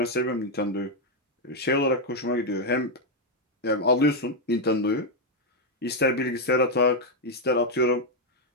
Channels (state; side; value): normal; both; correlation 0.01